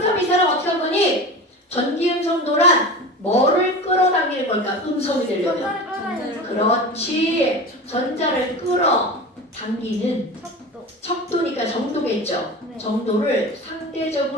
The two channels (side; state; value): both; normal; correlation 0.31